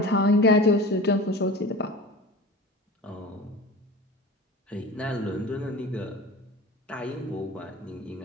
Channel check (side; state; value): both; normal; correlation 0.35